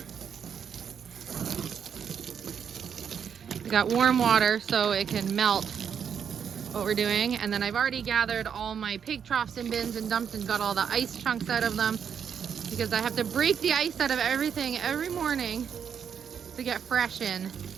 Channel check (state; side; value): quieter; left; 7.6 dB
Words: We got warm water so it can melt what we're doing. And then I've already gathered all my pig troughs and bins and dumped and got all the ice chunks out of them because I have to break the ice out of everything every morning to get fresh in.